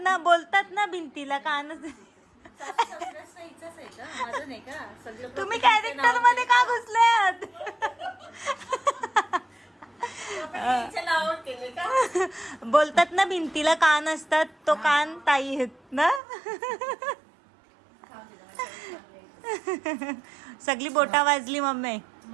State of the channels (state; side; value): drops out; left; at 16.2 s